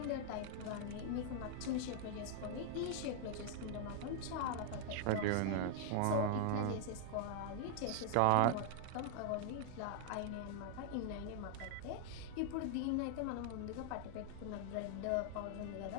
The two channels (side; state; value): both; different; correlation 0.00